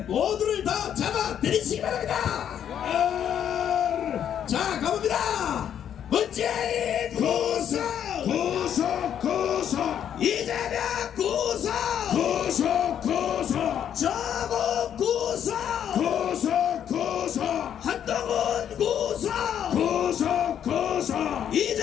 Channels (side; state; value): right; quieter; 9.4 dB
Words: 모두를 다 잡아들이시기 바랍니다. 자, 가봅니다. 문재인 구속, 이재명 구속, 조국 구속, 한동훈 구속,